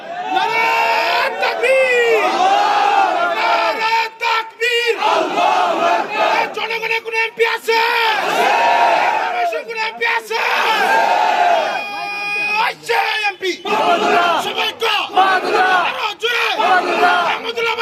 জনগণের কোন এমপি আছে? কোন এমপি আছে? এমপি সবাই আহমদুল্লাহ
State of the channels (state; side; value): identical; both; correlation 1.00